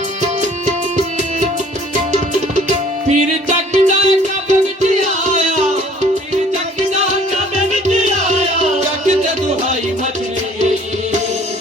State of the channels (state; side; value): normal; both; correlation 0.54